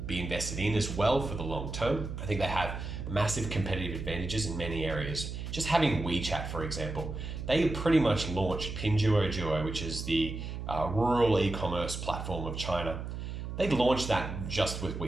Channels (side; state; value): right; noise; hum, 6 dB below the sound